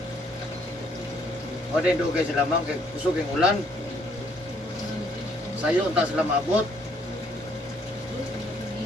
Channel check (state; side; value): normal; both; correlation 0.66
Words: O din doon kayo sila ma'am, kay kusog yung ulan. Sayo, unta sila maabot.